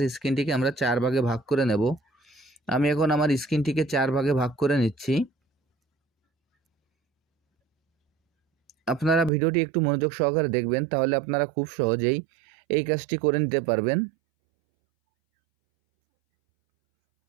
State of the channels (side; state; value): left; drops out; at 9.3 s